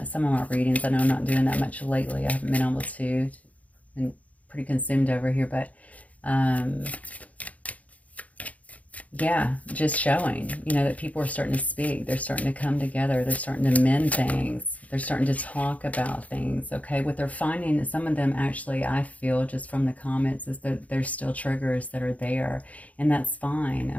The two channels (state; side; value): late; right; 0.070 ms